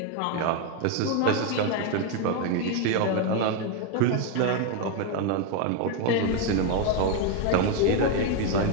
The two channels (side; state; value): both; different; correlation 0.02